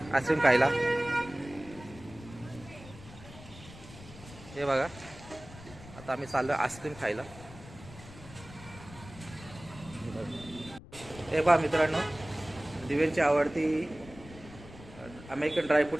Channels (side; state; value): left; noise; rumble, 17 dB below the sound